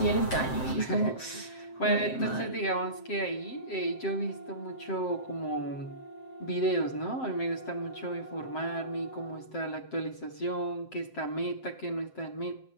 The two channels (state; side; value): late; right; 7.7 ms